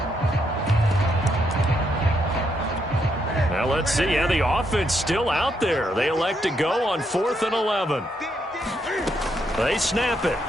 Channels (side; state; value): both; normal; correlation 0.77